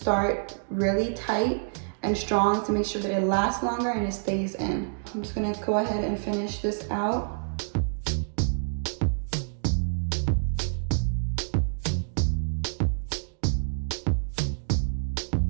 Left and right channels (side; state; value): left; silent; digital silence